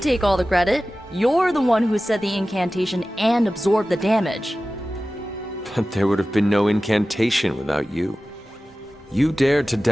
take all the credit. You're the one who said the incantation and absorbed the damage. But there would have been no incantation without you. You dared to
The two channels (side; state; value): both; normal; correlation 0.96